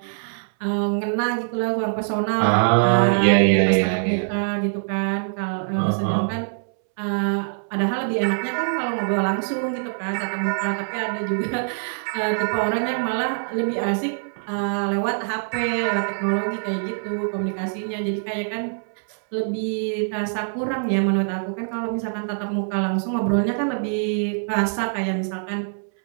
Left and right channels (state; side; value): silent; left; 63 dB below the other